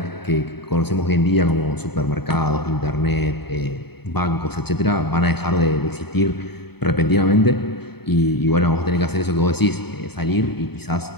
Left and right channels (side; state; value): right; late; 0.97 ms